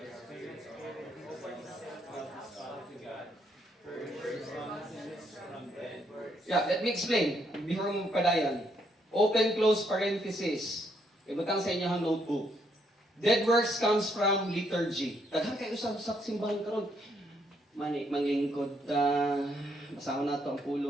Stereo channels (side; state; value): both; normal; correlation 0.73